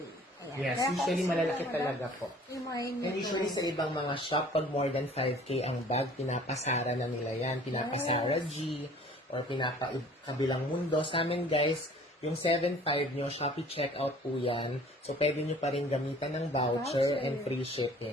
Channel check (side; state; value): both; normal; correlation 0.51